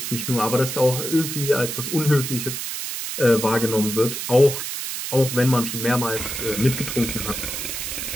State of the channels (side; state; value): right; noise; hiss, 5 dB below the sound